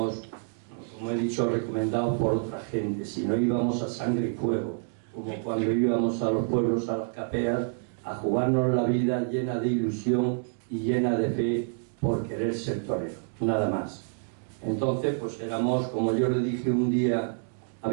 como he dicho, recomendados por otra gente, sino íbamos a sangre y fuego, como cuando íbamos a los pueblos, a las capeas, a jugarnos la vida llena de ilusión y llena de fe por querer ser torero, nada más. Entonces, pues éramos, como yo le dije un día a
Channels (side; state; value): left; silent; digital silence